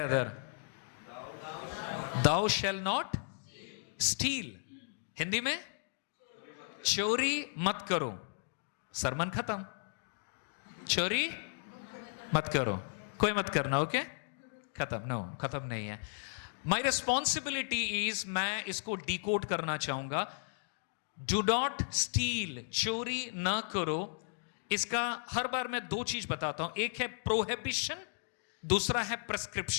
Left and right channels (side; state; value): right; silent; digital silence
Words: Thou shall not steal. Hindi में चोरी मत करो. सरमन खत्म. चोरी मत करो, कोई मत करना. ओके, खत्म. नो, खत्म नहीं है. माई रिस्पॉन्सिबिलिटी इज, मैं इसको डिकोड करना चाहूंगा. डू नॉट स्टील, चोरी ना करो. इसका हर बार मैं 2 चीज बताता हूं. एक है प्रोहिबिशन, दूसरा है